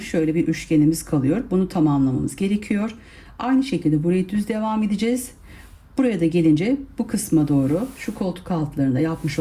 bir üçgenimiz kalıyor. Bunu tamamlamamız gerekiyor. Aynı şekilde burayı düz devam edeceğiz. Buraya da gelince bu kısma doğru şu koltuk altlarında yapmış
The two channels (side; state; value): both; identical; correlation 1.00